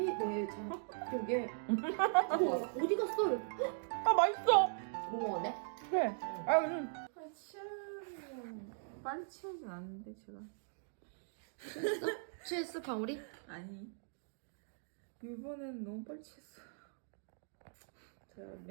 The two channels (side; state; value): left; silent; digital silence